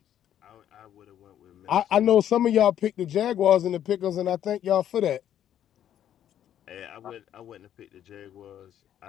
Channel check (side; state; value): right; quieter; 10.6 dB